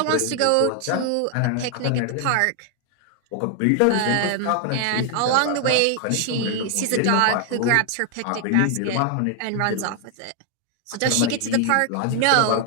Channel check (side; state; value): both; different; correlation 0.00